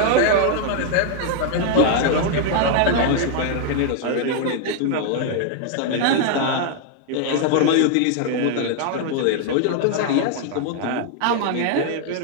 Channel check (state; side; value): different; both; correlation 0.00